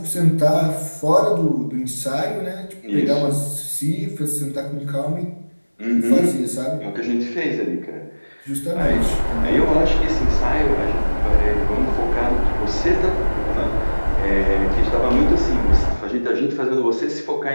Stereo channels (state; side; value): inverted; both; correlation -1.00